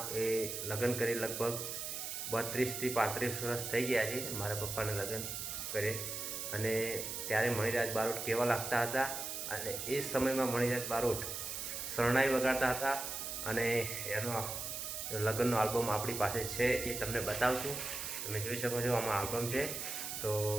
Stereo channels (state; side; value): noise; right; hiss, 5 dB below the sound